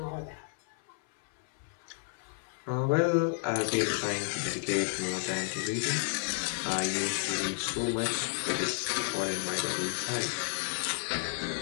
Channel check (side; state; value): right; silent; 57 dB below the other